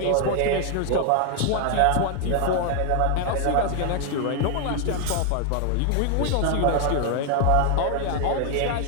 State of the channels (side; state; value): both; different; correlation 0.00